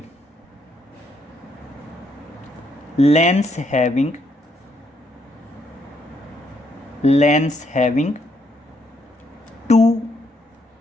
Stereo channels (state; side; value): normal; both; correlation 0.74